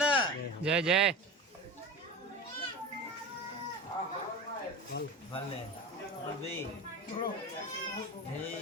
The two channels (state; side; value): normal; both; correlation 0.29